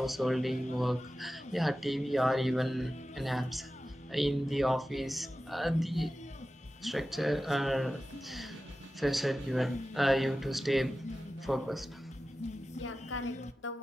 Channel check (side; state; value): both; normal; correlation 0.94